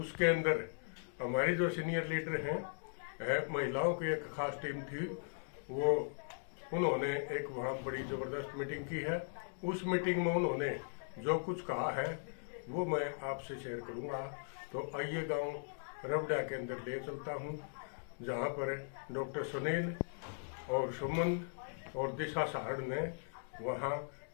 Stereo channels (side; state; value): right; silent; digital silence